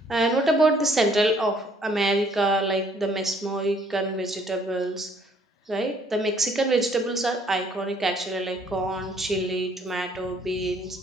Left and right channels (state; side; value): normal; both; correlation 0.63